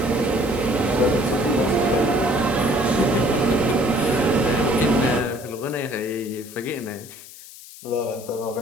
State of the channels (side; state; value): left; noise; hiss, 17 dB below the sound